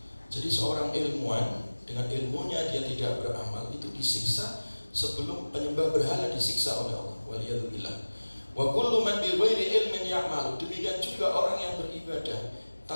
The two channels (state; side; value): inverted; both; correlation -1.00